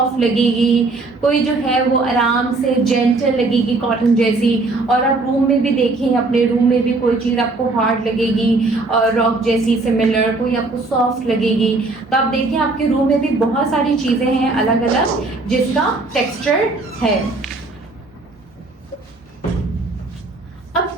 लगेगी, कोई जो है वो आराम से जेंटल लगेगी, कॉटन जैसी। और आप रूम में भी देखें, अपने रूम में भी कोई चीज़ आपको हार्ड लगेगी और रॉक जैसी सिमिलर, कोई आपको सॉफ्ट लगेगी। तो आप देखिए आपके रूम में भी बहुत सारी चीज़ें हैं अलग अलग जिसका टेक्सचर है। अब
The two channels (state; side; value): quieter; left; 3.4 dB